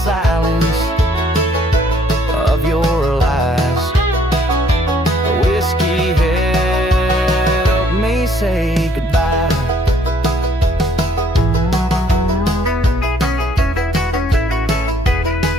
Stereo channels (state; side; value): normal; both; correlation 0.64